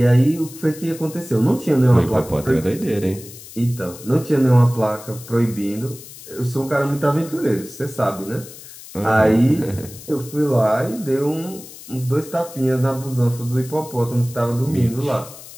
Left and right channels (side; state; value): left; noise; hiss, 17 dB below the sound